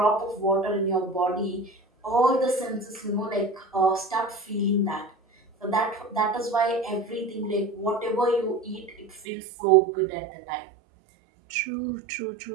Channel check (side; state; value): left; drops out; at 9.2 s